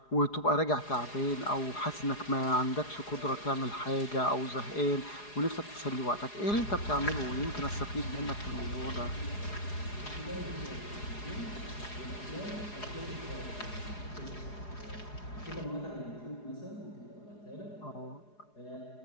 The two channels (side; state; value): right; late; 4.8 ms